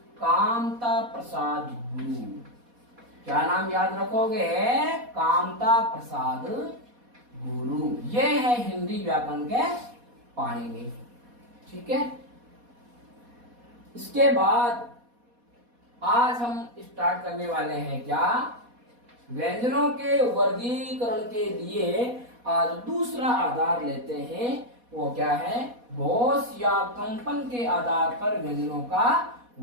कामता प्रसाद गुरु। क्या नाम याद रखोगे, कामता प्रसाद गुरु। ये है हिंदी व्याकरण के पाणिनि। ठीक है, इसके बाद आज हम स्टार्ट करने वाले हैं क्या, व्यंजनों के वर्गीकरण के लिए आज दूसरा आधार लेते हैं। वो क्या है, घोष या कंपन के आधार पर व्यंजनों का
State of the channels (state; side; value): late; left; 4.1 ms